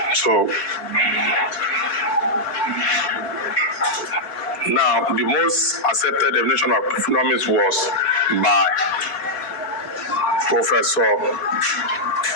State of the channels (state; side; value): late; right; 4.2 ms